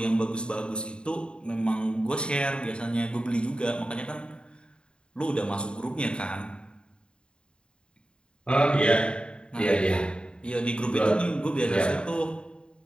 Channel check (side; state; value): right; late; 0.052 ms